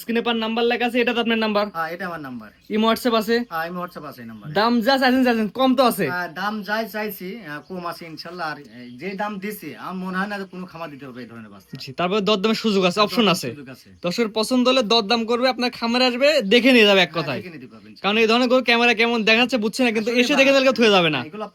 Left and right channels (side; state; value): both; identical; correlation 1.00